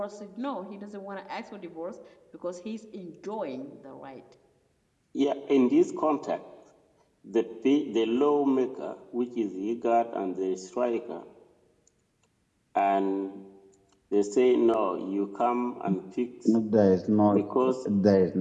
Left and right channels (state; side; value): identical; both; correlation 1.00